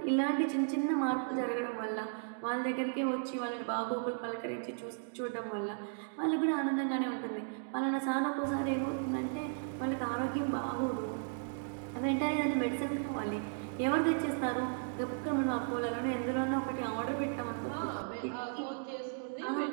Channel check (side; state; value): left; silent; digital silence